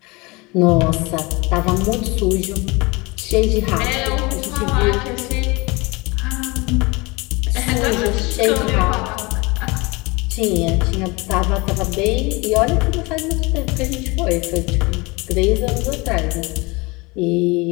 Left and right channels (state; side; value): quieter; right; 25.4 dB